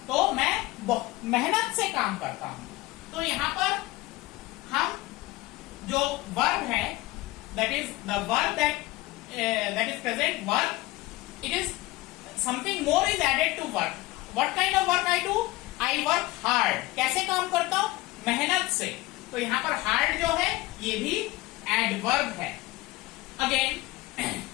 तो मैं मेहनत से काम करता हूं. तो यहां पर हम जो वर्ब है, that is the verb that is present verb, it is something more is added to work. What kind of work I do? I work hard. कैसे काम करता हूं? मेहनत से. तो यहां पर हार्ड जो है ये भी एडवर्ब है. Again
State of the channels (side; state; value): right; quieter; 19.9 dB